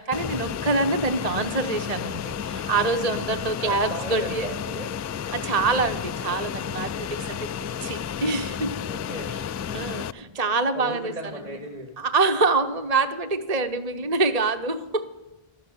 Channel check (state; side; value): late; left; 1.7 ms